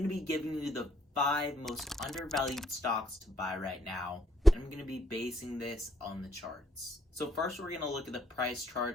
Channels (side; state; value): both; normal; correlation 0.70